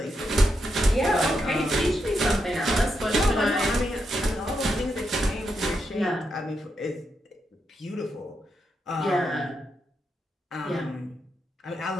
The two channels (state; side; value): normal; both; correlation 0.83